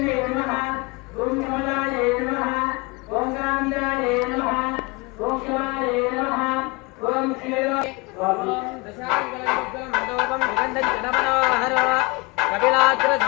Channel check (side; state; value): right; quieter; 26.9 dB